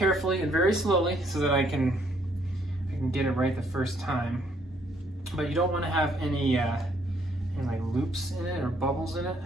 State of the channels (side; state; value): both; normal; correlation 0.68